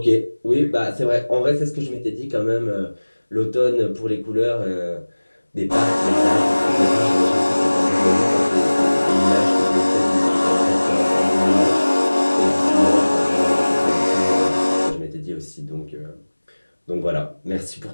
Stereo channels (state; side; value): inverted; both; correlation -1.00